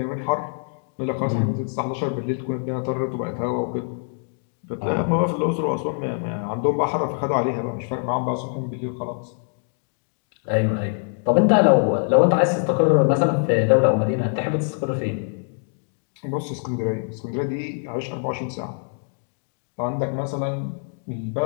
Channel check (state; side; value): silent; right; 63 dB below the other